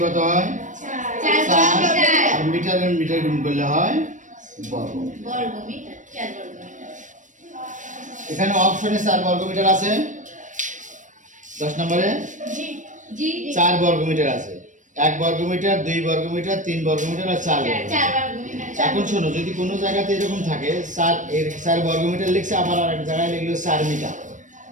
কত হয়? 4। আর মিটার আর মিটার গুণ করলে হয় বর্গ। এখানে অপশনে 4 বর্গ মিটার আছে, 10 নম্বরে 4 বর্গ মিটার আছে। 1 বর্গ মিটার, 2 বর্গ মিটার, 3 বর্গ মিটার আর 4 বর্গ মিটার। এখন শোনো, যদি কোনো জায়গাতে এরকম থাকে 4 বর্গ মিটার লিখছে, আবার আরেক জায়গায় লিখলো 4 মিটার,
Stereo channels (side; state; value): left; late; 0.37 ms